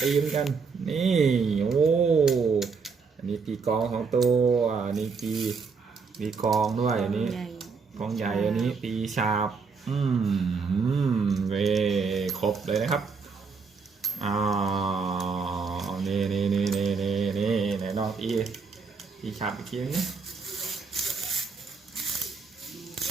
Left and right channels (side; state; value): left; quieter; 5.2 dB